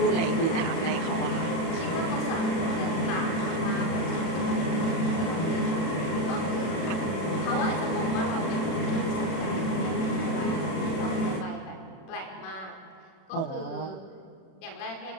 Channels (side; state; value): right; late; 32 ms